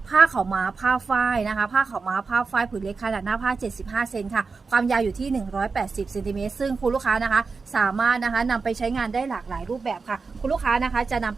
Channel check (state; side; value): quieter; left; 4.6 dB